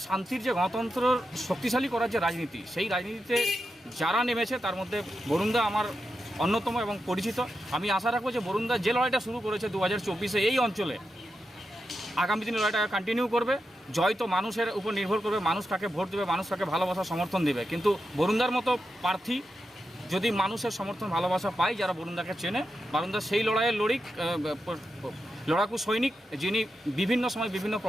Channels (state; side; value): normal; both; correlation 0.88